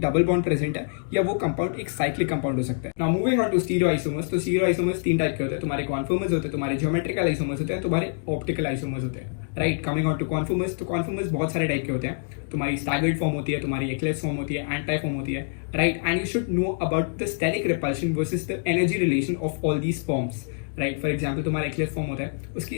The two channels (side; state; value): right; silent; digital silence